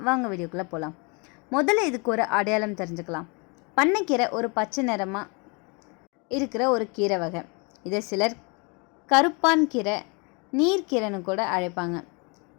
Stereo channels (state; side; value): quieter; right; 31.5 dB